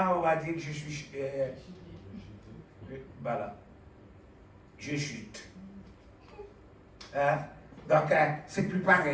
on va dire que je suis... voilà. Je chute. Donc, c'est plus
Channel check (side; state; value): both; identical; correlation 1.00